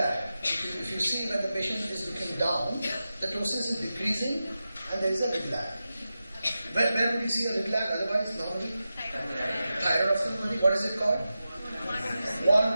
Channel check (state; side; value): inverted; both; correlation -0.92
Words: If you see when the patient is looking down, the ptosis is decreasing and there is a lid lag. Where would you see a lid lag otherwise normally? Thyroid ophthalmology. What is it called?